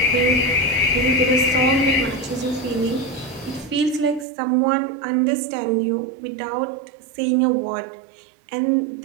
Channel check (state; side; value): drops out; left; at 4.2 s